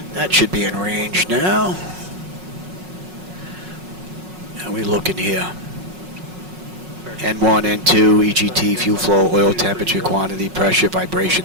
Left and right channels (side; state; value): left; late; 5.4 ms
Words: That should be in range now. How are we looking here? N1, N2, EGT, fuel flow, oil temperature, quantity, pressure,